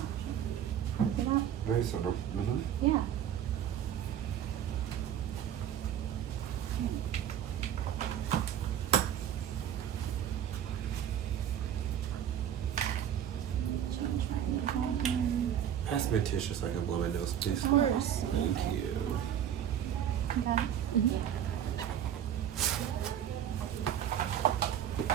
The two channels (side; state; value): left; quieter; 9.9 dB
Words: treated. Look it up. Very subtle. Mm-hmm. Yeah. Change my name. Pass me a tissue so I can blow my nose, please. Of course. Thank you. Okay.